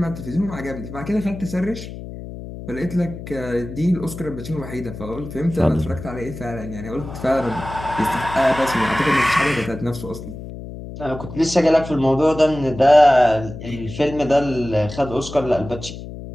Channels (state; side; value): noise; left; hum, 11 dB below the sound